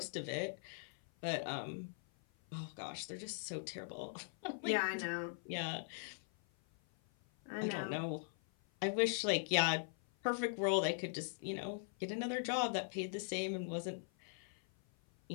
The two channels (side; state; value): right; silent; 51 dB below the other